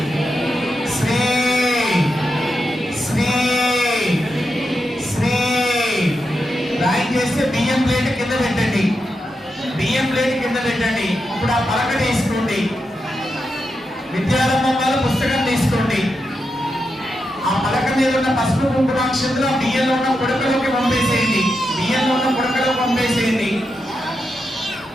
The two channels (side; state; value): both; normal; correlation 0.87